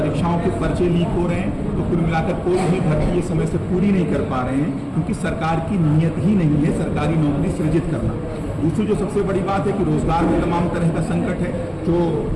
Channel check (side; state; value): both; identical; correlation 1.00